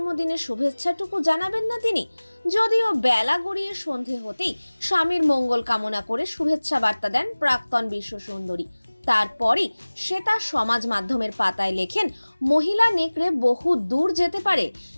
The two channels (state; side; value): inverted; both; correlation -1.00